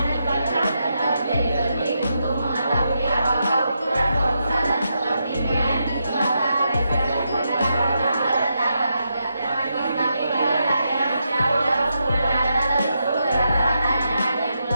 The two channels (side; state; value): both; inverted; correlation -0.83